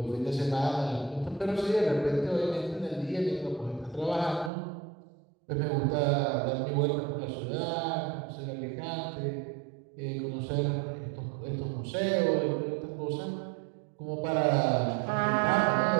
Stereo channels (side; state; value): left; drops out; at 4.5 s